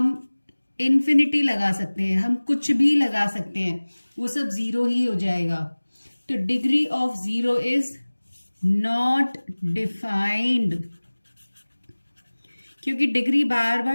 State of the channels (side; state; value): both; inverted; correlation -1.00